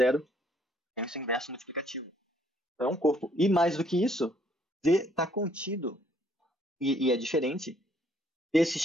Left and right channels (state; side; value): normal; both; correlation 0.65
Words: tem o seu inverso multiplicativo. Então, é um corpo. E mais do que isso, Z está contido, e é diferente, desse